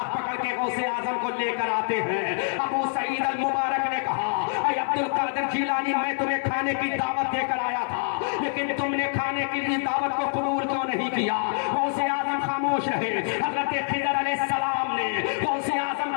پکڑ کے غوث اعظم کو لے کر آتے ہیں. ابو سعید المبارک نے کہا, اے عبد القادر جیلانی, میں تمہیں کھانے کی دعوت دے کر آیا تھا, لیکن تم نے کھانے کی دعوت کو قبول کیوں نہیں کیا؟ غوث اعظم خاموش رہے. حضرت خضر علیہ السلام نے غوث اعظم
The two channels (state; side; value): silent; right; 61 dB below the other